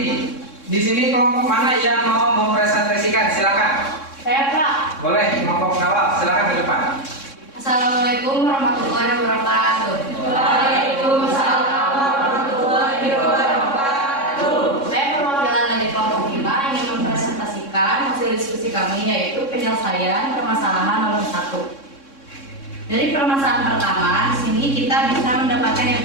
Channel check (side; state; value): right; late; 3.6 ms